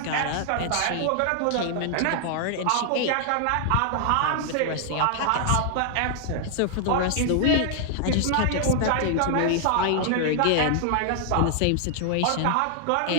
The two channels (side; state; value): both; different; correlation 0.00